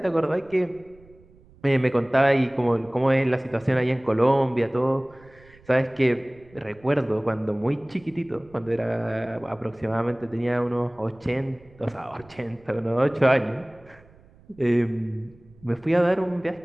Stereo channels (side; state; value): right; noise; rumble, 26 dB below the sound